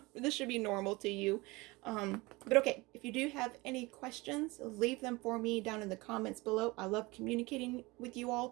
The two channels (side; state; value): left; quieter; 23.1 dB